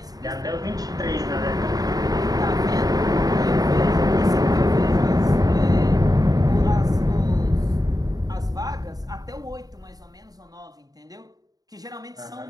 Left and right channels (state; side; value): late; left; 0.18 ms